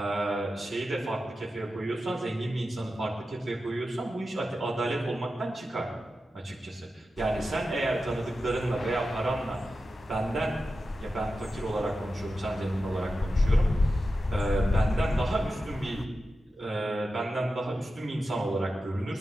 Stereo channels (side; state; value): both; normal; correlation 0.91